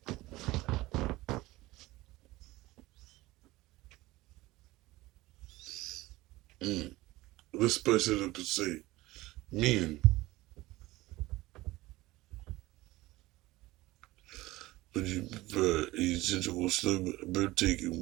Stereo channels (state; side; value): quieter; left; 18.9 dB